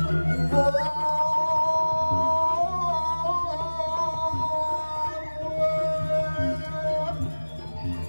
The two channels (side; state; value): both; inverted; correlation -1.00